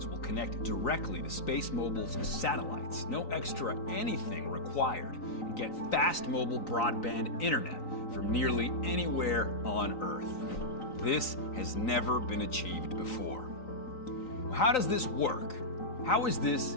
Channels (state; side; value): late; right; 3.9 ms